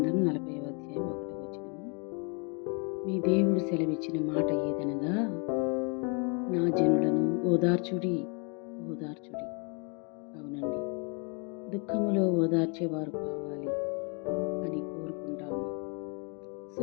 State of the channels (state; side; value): quieter; right; 35.4 dB